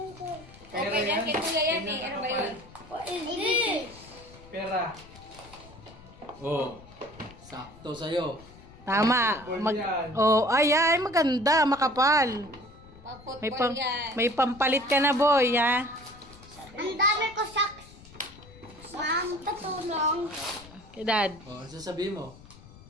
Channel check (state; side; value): noise; left; rumble, 21 dB below the sound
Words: Pera Okay, yan. yan? Kay kuya yan eh. Ano ba yun? What is this? Pera. Oh. Sakto sa'yo. Tama. Football yan. Oh, ay, maganda, makapal. May, Pag-football yan. may pampalit ka na, boy, ha? Ang dami ko socks. Ma'am, tatulong. Kay Dad. Oh, ano sasabihin mo?